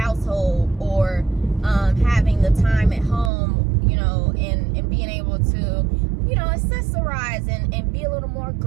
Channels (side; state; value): left; drops out; at 3.3 s